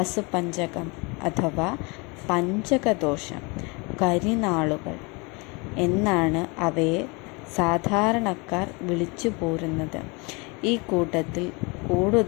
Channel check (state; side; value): quieter; right; 28.9 dB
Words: അഥവാ പഞ്ചകദോഷം, കരിനാളുകൾ എന്നാണ് അവയെ സാധാരണക്കാർ വിളിച്ചു പോരുന്നത്. ഈ കൂട്ടത്തിൽ